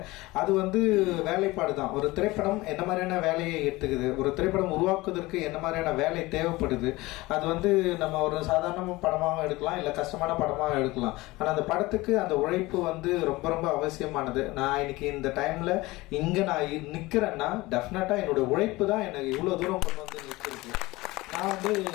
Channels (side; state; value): right; quieter; 20.6 dB